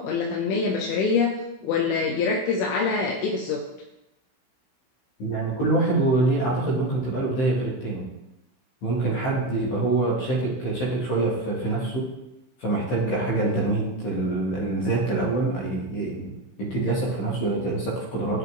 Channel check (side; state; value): right; late; 15 ms